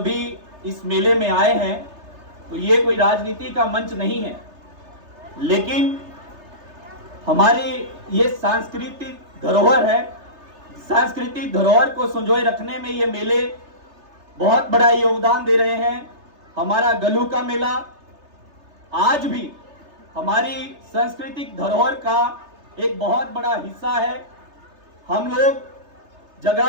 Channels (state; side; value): late; left; 3.3 ms